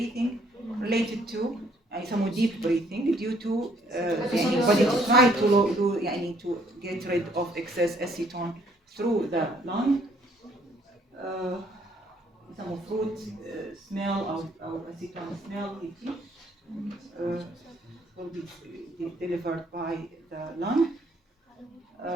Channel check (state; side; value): normal; both; correlation 0.65